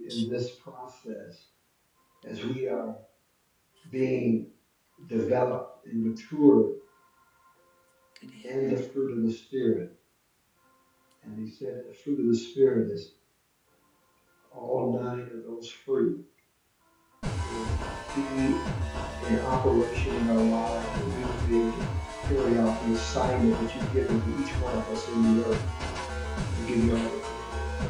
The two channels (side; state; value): both; identical; correlation 1.00